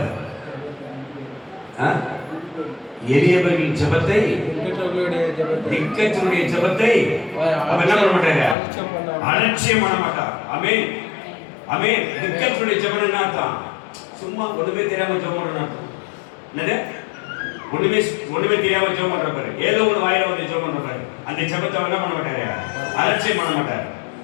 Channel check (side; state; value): right; drops out; at 8.6 s